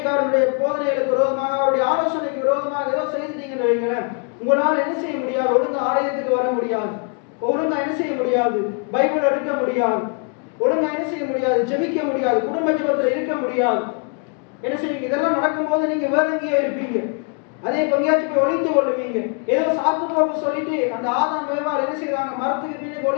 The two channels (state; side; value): quieter; right; 37.2 dB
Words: போதனைகளுக்கு விரோதமாக, அவருடைய ஆலோசனைக்கு விரோதமாக ஏதோ செய்துட்டீங்கன்னு வைங்களேன், உங்களால் என்ன செய்ய முடியாது? ஒழுங்கு ஆலயத்துக்கு வர முடியாது, ஒழுங்கா என்ன செய்ய முடியாது? பைபிள் எடுக்க முடியாது, ஒழுங்கா என்ன செய்ய முடியாது? ஜெபிக்க முடியாது, குடும்ப ஜெபத்துல இருக்க முடியாது. என்ன செய்வீங்க? இதெல்லாம் நடக்கும்போது நீங்க வேற எங்கேயே இருப்பீங்க. அதே பங்கியாச்சு போய் ஒளிந்து கொள்ளுவீங்க. ஏதோ சாக்கு போக்கு சொல்லிட்டு அந்த ஆதாம் ஏவாள் என்ன செய்வாங்க? மரத்துக்கு பின்னுக்கு